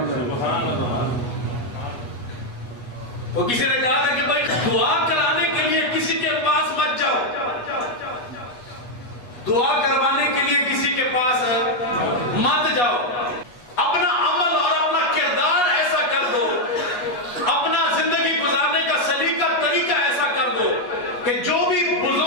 وہ کسی نے کہا تھا کہ بھائی دعا کرانے کے لیے کسی کے پاس مت جاؤ, دعا کروانے کے لیے کسی کے پاس مت جاؤ. اپنا عمل اور اپنا کردار ایسا کر دو, اپنا زندگی گزارنے کا سلیقہ طریقہ ایسا کر دو کہ جو بھی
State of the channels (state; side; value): late; right; 8.3 ms